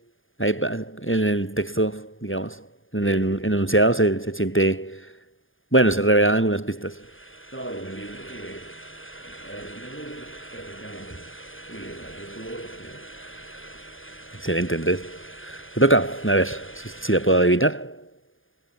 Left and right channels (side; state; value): right; late; 0.58 ms